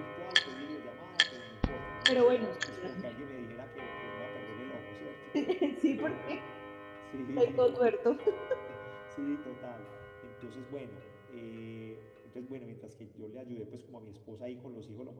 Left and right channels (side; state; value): both; identical; correlation 1.00